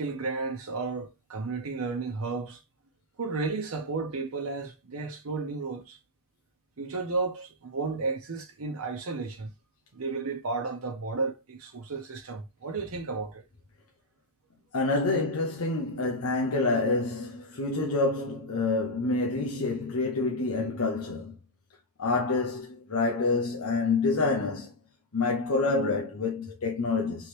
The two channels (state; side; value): normal; both; correlation 0.00